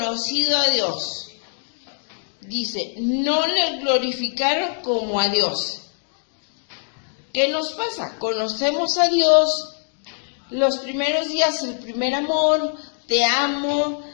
a Dios, dice, no le glorificaron como a Dios. ¿Qué nos pasa? Conocemos a Dios, los primeros días, el primer amor, te amo,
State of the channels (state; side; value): silent; right; 64 dB below the other